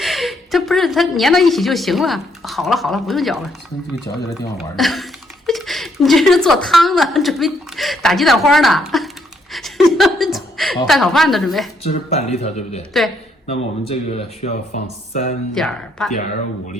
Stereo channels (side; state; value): both; normal; correlation 0.72